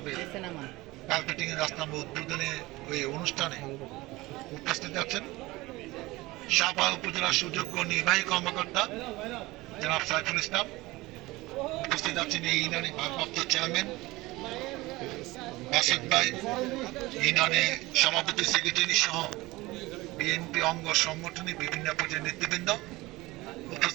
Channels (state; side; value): quieter; left; 20.4 dB